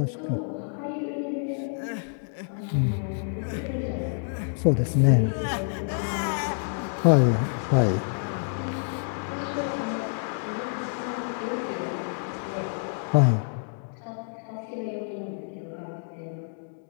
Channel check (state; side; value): silent; right; digital silence